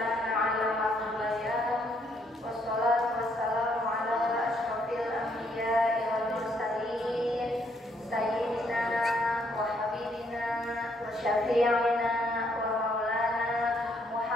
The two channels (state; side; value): normal; both; correlation 0.71